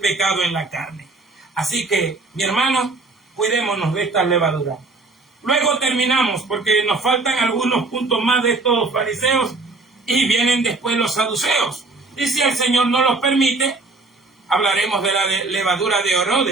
en la carne. Así que, mi hermano, cuidémonos de estas levaduras. Luego terminamos, porque nos faltan algunos puntos más de estos fariseos y vienen después los saduceos. Y si el Señor no los permite, hablaremos de la levadura de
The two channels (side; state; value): left; quieter; 3.5 dB